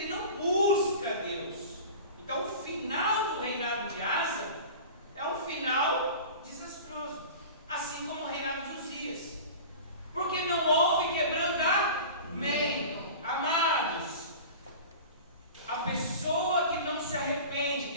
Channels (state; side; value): inverted; both; correlation -0.36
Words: não busca Deus. Então o final do reinado de Asa é um final desastroso, assim como o reinado de Uzias, porque não houve quebrantamento. Amados, a pessoa que não se